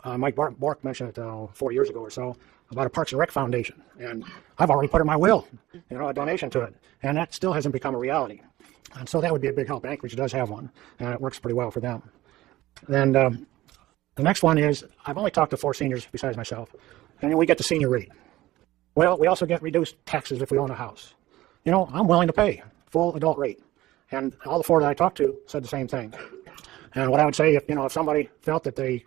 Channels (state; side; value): quieter; left; 16.5 dB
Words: Mike Bork mentioned it 4 years ago or so about a Parks and Rec Foundation, and I've already put in my will, a donation to it, and that still hasn't become a reality. And so that would be a big help. Anchorage does have one, and it works pretty well for them. Then the next one is, I've only talked to 4 seniors besides myself, and then we get the senior rate. Well, we also get reduced taxes if we own a house. I'm willing to pay full adult rate, and all the 4 that I talked to said the same thing. And what I would say, if somebody felt that they